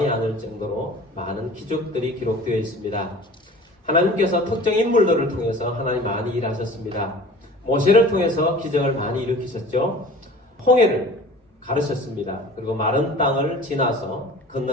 아닐 정도로 많은 기적들이 기록되어 있습니다. 하나님께서 특정 인물들을 통해서 하나님 많이 일하셨습니다. 모세를 통해서 기적을 많이 일으키셨죠. 홍해를 가르셨습니다. 그리고 마른 땅을 지나서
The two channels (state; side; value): normal; both; correlation 0.43